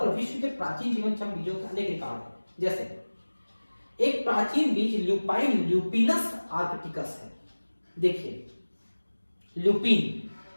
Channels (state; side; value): inverted; both; correlation -1.00